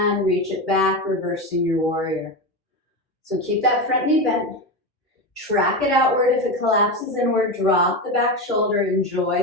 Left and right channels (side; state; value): both; normal; correlation 0.18